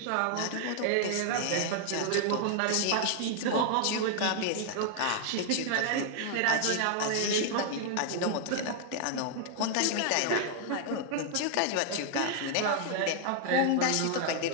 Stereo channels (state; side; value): different; both; correlation 0.00